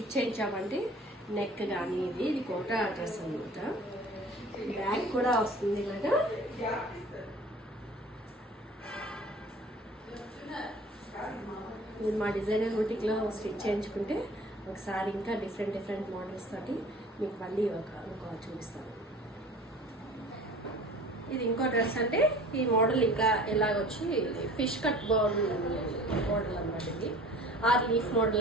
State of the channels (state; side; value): normal; both; correlation 0.45